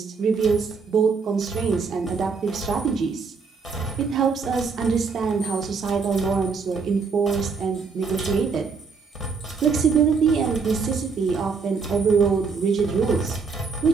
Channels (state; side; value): quieter; left; 5.1 dB